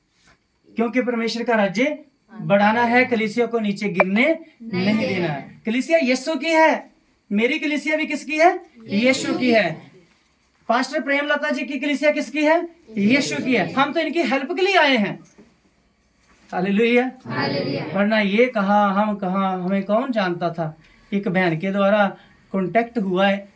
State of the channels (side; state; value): both; identical; correlation 1.00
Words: क्योंकि परमेश्वर का राज्य बढ़ाना है, कलीसिया को नीचे गिरने नहीं देना है। कलीसिया यीशु की है, मेरी कलीसिया भी किसकी है? यीशु की है। पास्टर प्रेमलता जी की कलीसिया किसकी है? यीशु की है। हम तो इनकी हेल्प के लिए आए हैं। हालेलुया। वरना ये कहा हम कहा, हमें कौन जानता था। एक बहन के द्वारा कांटेक्ट हुआ है